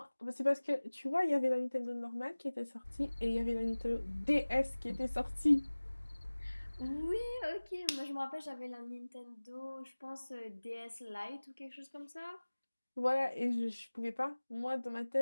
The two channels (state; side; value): inverted; both; correlation -1.00